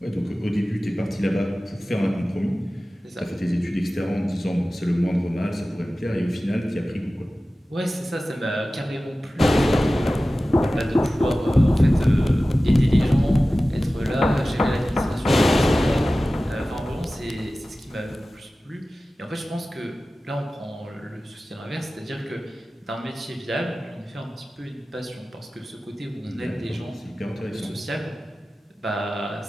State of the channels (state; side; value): normal; both; correlation 0.96